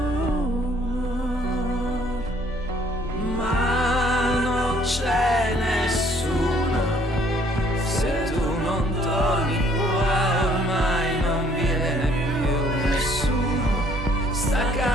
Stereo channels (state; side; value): normal; both; correlation 0.62